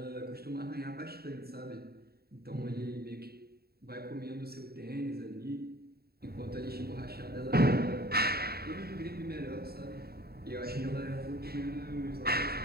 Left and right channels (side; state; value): left; late; 0.45 ms